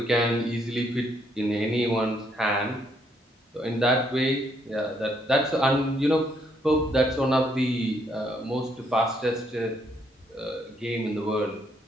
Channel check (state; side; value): normal; both; correlation 0.72